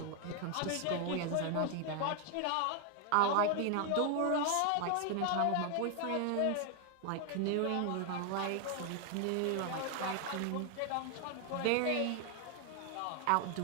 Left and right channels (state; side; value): different; both; correlation 0.00